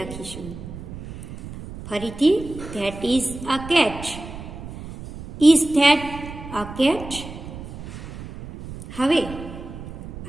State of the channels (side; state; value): right; noise; rumble, 12 dB below the sound